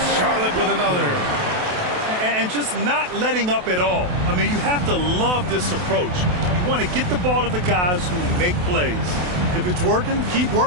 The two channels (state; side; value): late; left; 28 ms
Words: Charlotte with another. And just not letting up at all. I mean, you have to love this approach. You want to get the ball to the guys who make plays. If it's working, keep